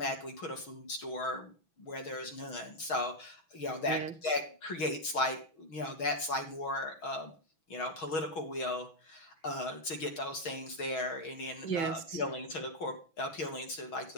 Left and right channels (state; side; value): late; right; 6.3 ms